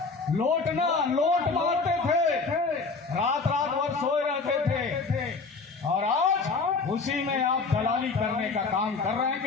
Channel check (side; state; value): right; quieter; 4.4 dB